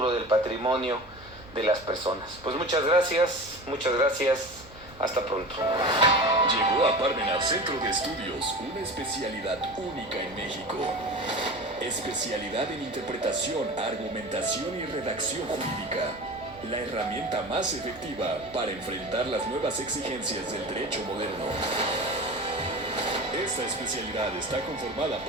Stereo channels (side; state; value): both; normal; correlation 0.33